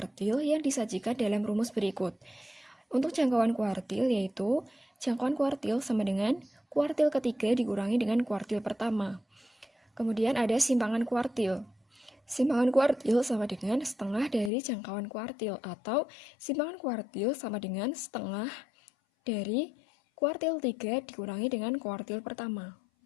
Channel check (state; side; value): drops out; right; at 14.5 s